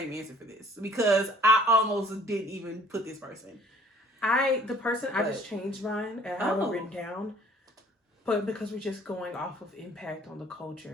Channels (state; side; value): normal; both; correlation 0.56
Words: answer for this because I almost didn't even put this person. I just changed mine. I have it written down. But because we're just going off of impact on the